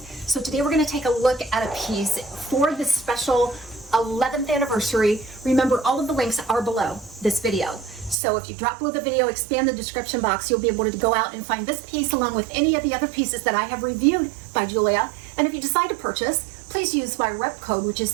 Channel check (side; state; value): left; drops out; at 8.2 s